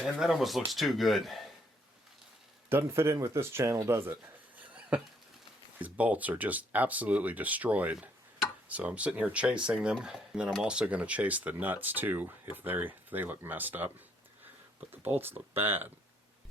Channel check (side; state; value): both; normal; correlation 0.69